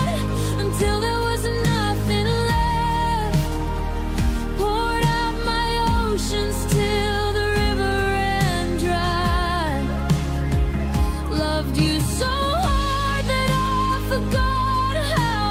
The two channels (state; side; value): identical; both; correlation 1.00